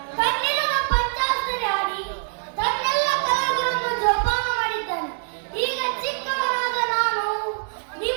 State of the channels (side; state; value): left; silent; digital silence